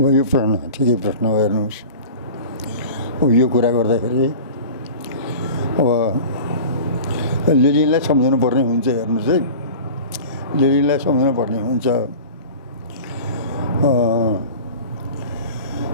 यो प्रश्न ठिकै प्रश्न हेर्नुहोस् अब यो कुरा गर्दाखेरि अब लेनिनलाई सम्झाउनु पर्ने हुन्छ हेर्नुहोस् है लेनिनलाई सम्झाउनु पर्ने हुन्छ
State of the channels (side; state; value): both; inverted; correlation -0.38